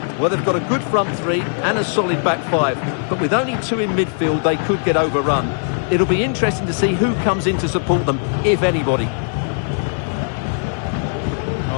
Well, they've got a good front three and a solid back five, but with only two in midfield, they could get overrun. It'll be interesting to see who comes in to support them, if anybody.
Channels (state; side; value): silent; right; 66 dB below the other